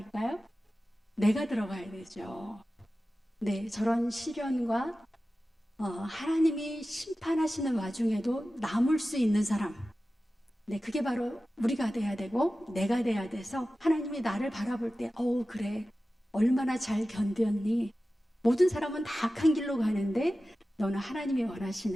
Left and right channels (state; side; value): normal; both; correlation 0.95